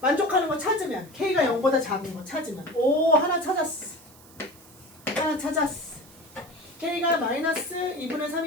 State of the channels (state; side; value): noise; right; hiss, 23 dB below the sound